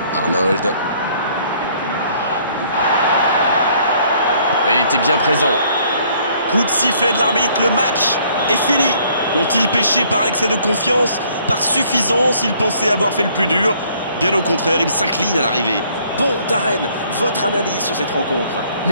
Arnold. Il était bien présent. Coup de sifflet de l'arbitre, le match est fini. Ont-ils péché par excès de confiance, par suffisance? Ils pensaient avoir fait le plus dur. Bien au contraire, ils s'inclinent à l'arrivée. Bon, Darren, votre analyse sur cette rencontre?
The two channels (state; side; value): inverted; both; correlation -0.62